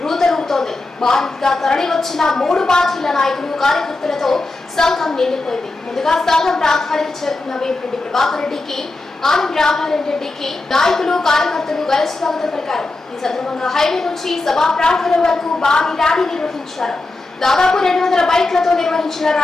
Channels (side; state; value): right; quieter; 3.1 dB